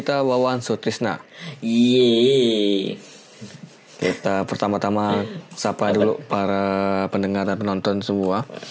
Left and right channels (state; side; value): identical; both; correlation 1.00